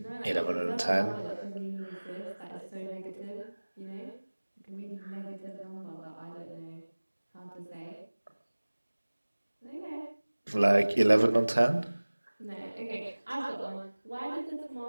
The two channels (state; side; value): inverted; both; correlation -1.00